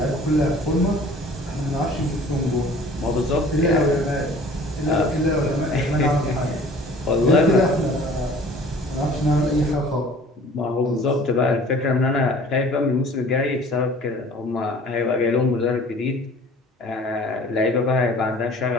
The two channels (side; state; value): both; normal; correlation 0.48